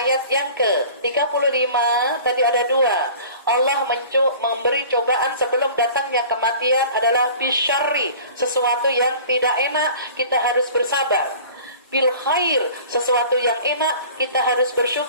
yang ke-35. Tadi ada 2. Allah memberi cobaan sebelum datangnya kematian adalah bisyarri, sesuatu yang tidak enak kita harus bersabar. Bil khair, sesuatu yang enak kita harus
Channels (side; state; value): both; inverted; correlation -0.44